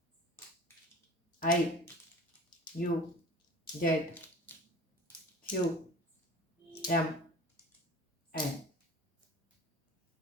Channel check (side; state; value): both; normal; correlation 0.40